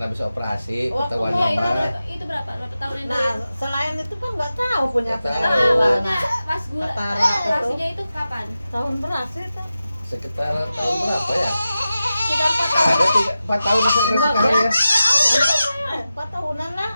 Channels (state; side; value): inverted; both; correlation -0.93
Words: operasi Oh, ketahuan Oh, itu apa? berapa? Berapa tahun yang Nah, selain itu kan nggak tahu punya Nggak tahu. penyakit maksudnya gula. pas gula Ketara itu. operasinya itu kapan? Tahun beras itu. Sekitar tahun berapa ya? Sekitar 4 tahun. Ada 4 tahun Enggak, sekarang ya. 4 tahunan lah.